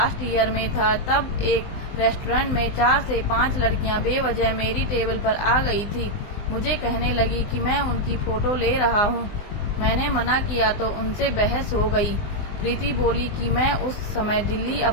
ईयर में था, तब एक रेस्टोरेंट में 4 से 5 लड़कियां बेवजह मेरी टेबल पर आ गई थी। मुझे कहने लगी कि मैं उनकी फोटो ले रहा हूं। मैंने मना किया तो उनसे बहस हो गई। प्रीति बोली कि मैं उस समय दिल्ली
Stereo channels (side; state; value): right; late; 20 ms